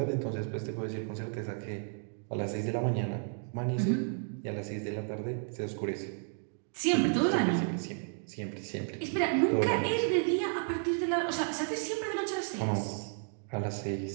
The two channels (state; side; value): silent; left; 55 dB below the other